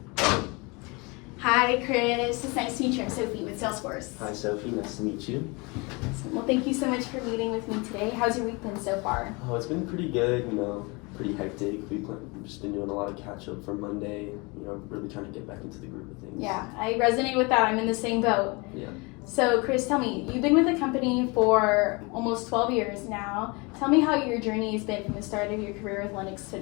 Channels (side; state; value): right; quieter; 27.8 dB